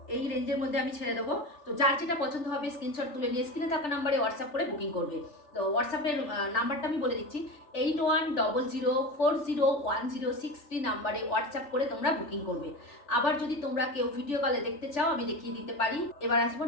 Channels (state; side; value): late; right; 3.4 ms